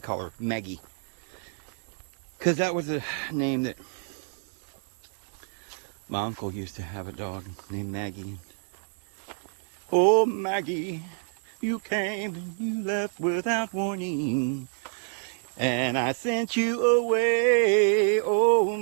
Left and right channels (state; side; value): silent; left; 59 dB below the other